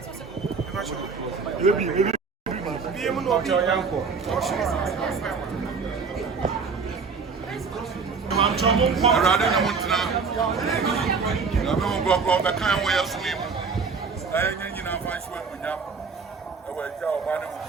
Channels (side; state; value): left; quieter; 5.1 dB